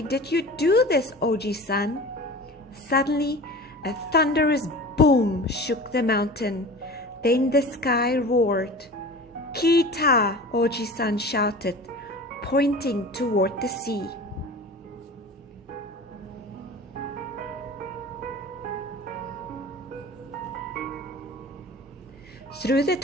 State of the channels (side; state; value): both; normal; correlation 0.36